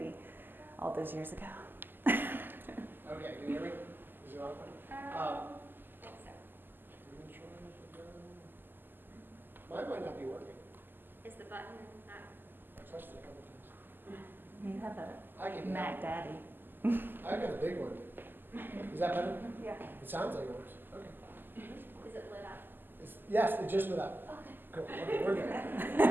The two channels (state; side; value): late; left; 0.092 ms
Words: all those years ago. Okay, can you hear me? Is it on? Mine might not be working. Is the button not? I touched it a couple times. You have I a can. Mac Daddy. I got a big one. Is that better? Yeah. It sounds like it works. Okay. Is it lit up? Yes, it just lit up. Okay. Cool. Okay, we're good.